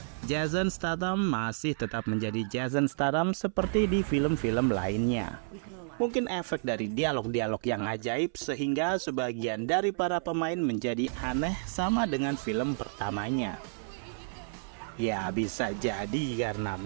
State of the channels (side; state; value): left; silent; 57 dB below the other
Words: Jason Statham masih tetap menjadi Jason Statham seperti di film-film lainnya. Mungkin efek dari dialog-dialog yang ajaib sehingga sebagian dari para pemain menjadi aneh sama dengan film pertamanya. Ya bisa jadi karena